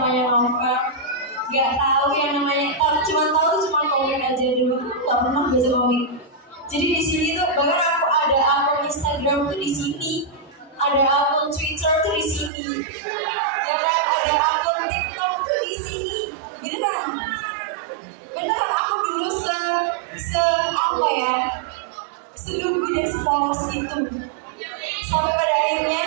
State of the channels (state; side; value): drops out; left; at 12.5 s